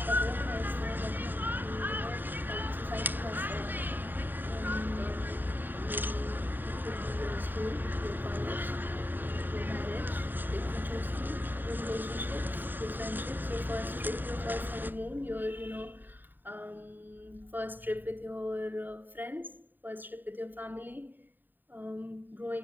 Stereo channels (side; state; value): left; late; 0.091 ms